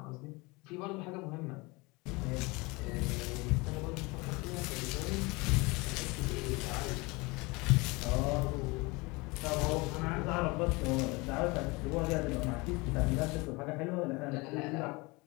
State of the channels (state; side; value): quieter; right; 25.3 dB